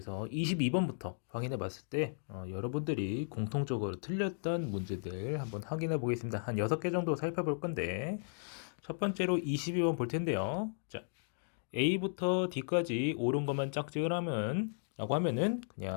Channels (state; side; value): silent; right; digital silence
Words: 22번부터 확인해 봤을 때 여러분들이 공통적으로 틀렸던 문제들 한번 확인해 보겠습니다. 한 6개 정도 살펴볼 건데 첫 번째로 22번 볼 텐데요. 자, A부터 D까지 옳은 것만 짝짓을 하면 라고 하면은